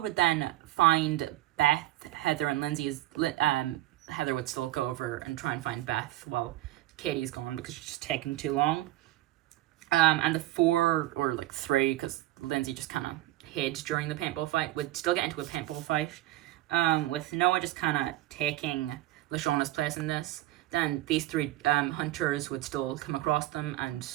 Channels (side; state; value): left; quieter; 16.2 dB